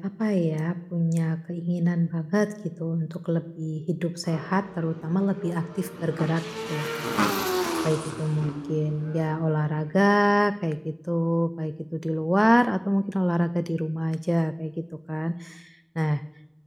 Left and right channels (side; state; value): both; identical; correlation 1.00